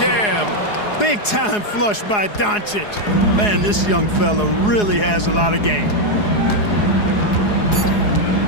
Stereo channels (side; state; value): right; late; 4.8 ms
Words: Big time flush by Doncic. Man, this young fella really has a lot of game.